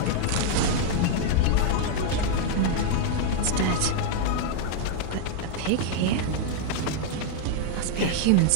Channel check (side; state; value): both; different; correlation 0.00